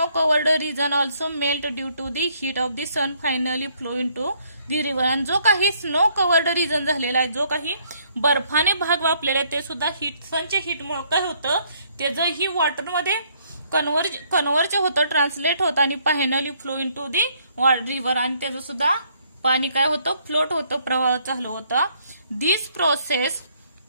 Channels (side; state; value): both; inverted; correlation -0.67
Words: covered region also melt due to the heat of the sun finally flow into the river. आणि जो काही स्नो कवर्ड रिजन झालेला आहे, जो काही बर्फाने भाग व्यापलेला आहे, ते सुद्धा सनच्या हीटमुळे काय होतं, त्याचं ही वॉटरमध्ये कन्व्हर्ज होतं, ट्रान्सलेट होतं आणि finally flow into the river. आणि त्याचं सुद्धा पाणी काय होतं, फ्लोट होतं, प्रवाह चालू होता. This process